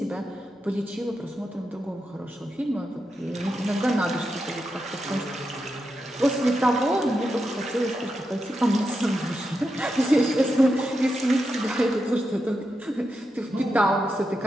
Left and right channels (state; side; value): normal; both; correlation 0.87